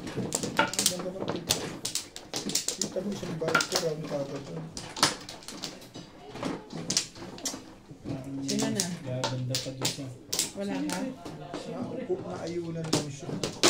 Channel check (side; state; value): both; identical; correlation 1.00